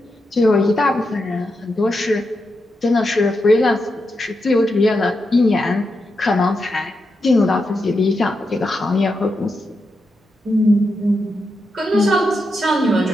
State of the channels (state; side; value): normal; both; correlation 0.86